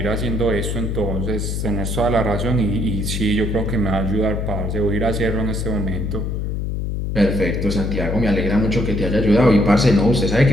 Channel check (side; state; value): left; noise; hum, 2 dB below the sound